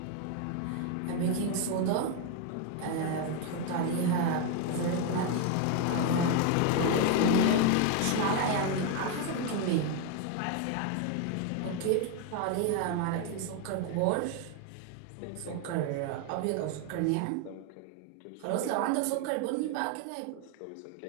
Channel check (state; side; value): different; both; correlation 0.01